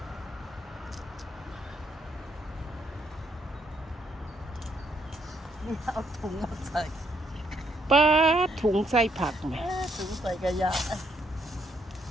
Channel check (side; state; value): both; normal; correlation 0.73